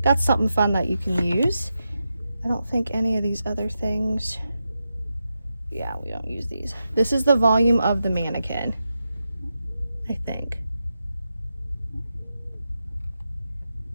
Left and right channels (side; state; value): both; inverted; correlation -0.88